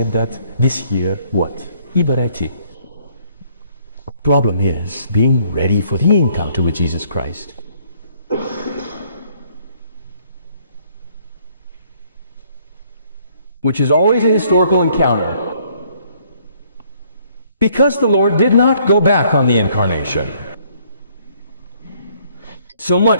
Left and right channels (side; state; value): both; inverted; correlation -0.64